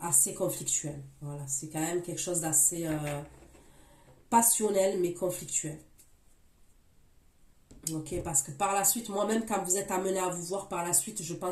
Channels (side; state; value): both; identical; correlation 1.00